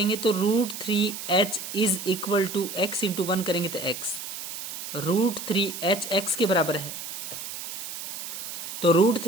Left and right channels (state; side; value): noise; right; hiss, 8 dB below the sound